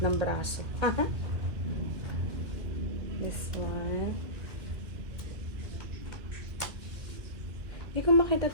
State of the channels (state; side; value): late; left; 2.1 ms